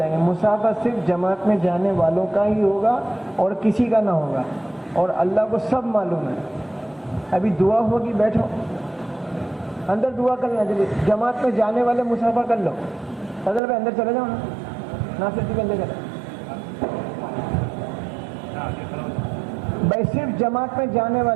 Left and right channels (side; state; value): left; drops out; at 13.6 s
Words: گے۔ مصافحہ صرف جماعت میں جانے والوں کا ہی ہوگا اور کسی کا نہ ہوگا، اور اللہ کو سب معلوم ہے۔ ابھی دعا ہوگی، بیٹھو اندر دعا کر لیں، جلدی جماعت میں جانے والے مصافحہ کر لو، فضل بھائی اندر چلے جاؤ نا، ناصر جی اندر چلے بھائی، صرف جماعت میں جانے